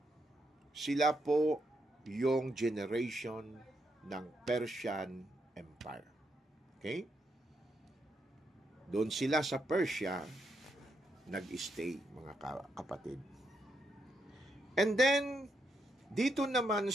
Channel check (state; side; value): normal; both; correlation 0.80